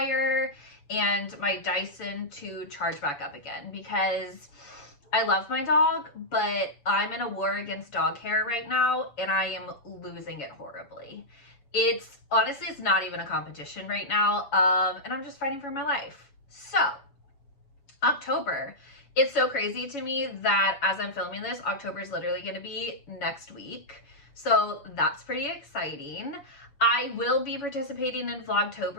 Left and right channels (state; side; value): late; right; 7.1 ms